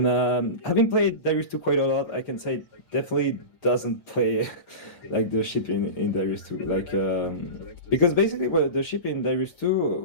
having played Darius 2 quite a lot, I can say it definitely doesn't play like the ship in Darius 2. Like because basically what the ship in Darius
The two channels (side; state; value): right; late; 6.6 ms